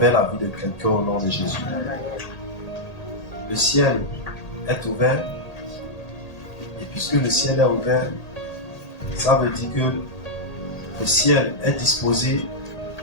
la vie de quelqu'un au nom de Jésus. Le ciel est ouvert, et puisque le ciel est ouvert, ça veut dire que le ciel est disposé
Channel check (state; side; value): late; right; 1.8 ms